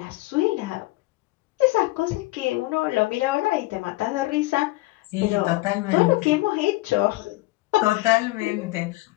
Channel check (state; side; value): quieter; right; 20.4 dB